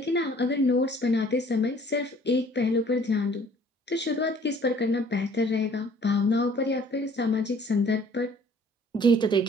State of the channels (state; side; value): normal; both; correlation 0.55